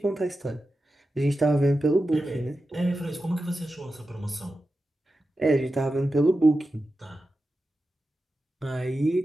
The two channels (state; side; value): normal; both; correlation 0.92